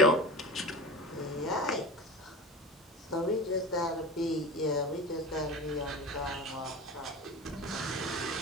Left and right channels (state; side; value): normal; both; correlation 0.31